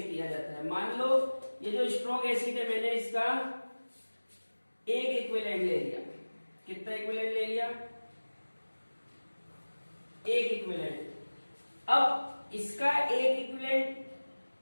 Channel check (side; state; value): both; inverted; correlation -1.00